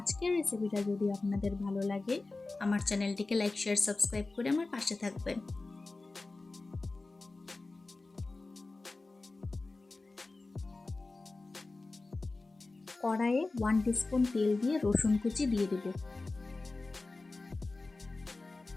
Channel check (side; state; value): right; quieter; 3.4 dB